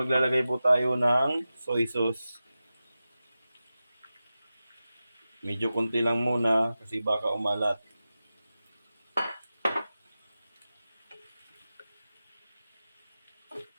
po tayo ng soy sauce. Medyo konti lang muna kasi baka umalat.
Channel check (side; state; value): both; inverted; correlation -0.94